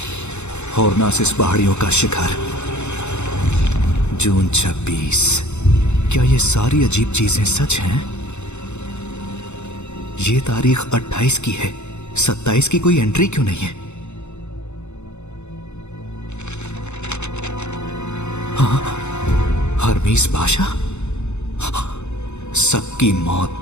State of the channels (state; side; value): late; right; 0.82 ms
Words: हॉर्नासिस पहाड़ियों का शिखर। जून 26। क्या ये सारी अजीब चीजें सच हैं? ये तारीख 28 की है, 27 की कोई एंट्री क्यों नहीं है? हाँ, हरमीस बादशाह, सबकी